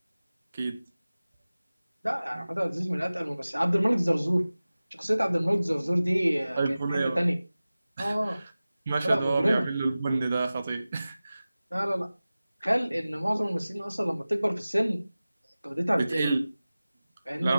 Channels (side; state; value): both; inverted; correlation -0.97